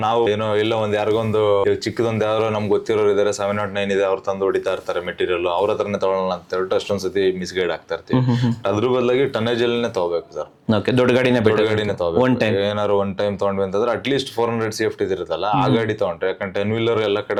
ನಾವು ಏನೋ ಇಲ್ಲ ಒಂದ್ ಯಾರಿಗೊಂದು ಚಿಕ್ಕದೊಂದು ಯಾರೋ ನಮ್ಗೆ ಗೊತ್ತಿರೋರು ಇದಾರೆ 709 ಇದೆ, ಅವ್ರು ತಂದು ಹೊಡಿತಾ ಇರ್ತಾರೆ ಮೆಟೀರಿಯಲ್, ಅವ್ರ ಹತ್ರನೇ ತಗೊಳ್ಳೋಣ ಅಂತ ಹೇಳ್ಬಿಟ್ಟು ಅಷ್ಟೊಂದ್ ಸತಿ ಮಿಸ್ಗೈಡ್ ಆಗ್ತಾ ಇರ್ತೀವಿ. ಅದ್ರ ಬದಲಾಗಿ ಟನ್ನೇಜ್ ಅಲ್ಲೇ ತಗೋಬೇಕು ಸರ್. ದೊಡ್ಡ ಗಾಡಿನೇ ತಗೋಬೇಕು. ಏನಾದ್ರು ಒನ್ ಟೈಮ್ ತಗೊಂಡ್ವಿ ಅಂತಂದ್ರೆ ಅಟ್ಲೀಸ್ಟ್ 400 ಸೇಫ್ಟಿ ಇರುತ್ತಲ್ಲ ಆ ಗಾಡಿ ತಗೊಂಡ್ರೆ, ಯಾಕಂದ್ರೆ 10 ವೀಲರ್ ಎಲ್ಲ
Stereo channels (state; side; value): identical; both; correlation 1.00